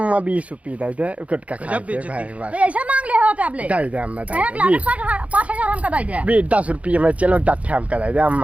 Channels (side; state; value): left; late; 0.066 ms